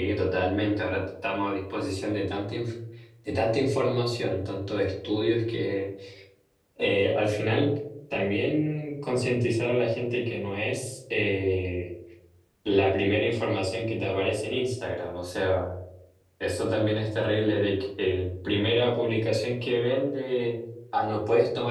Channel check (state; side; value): identical; both; correlation 1.00